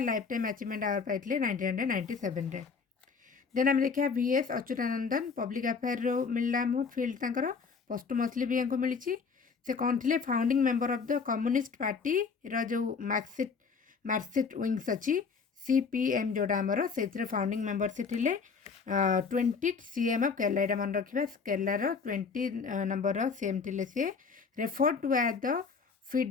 lifetime achievement award पाई 1997। देन आम देखा VS अच्युतानंदन पब्लिक अफेयर मिलला फिल्ड तंकर पोस्टमसली भी हमको मिली। से कौन थे founding member of the communist party जो मार्कसिस्ट विंग्स अच्छी CPM जोड़ा आमर से फाउंडिंग मेंबर से थे 20 CM ऑफ केरला। यहाँ मन रखा केरलार 20 नंबर CM थे सी refer to as the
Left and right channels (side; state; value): right; quieter; 5.3 dB